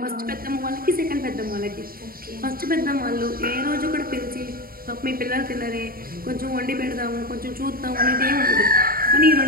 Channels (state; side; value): late; left; 0.43 ms